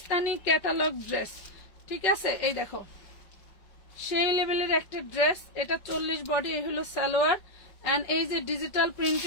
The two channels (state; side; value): late; right; 5.4 ms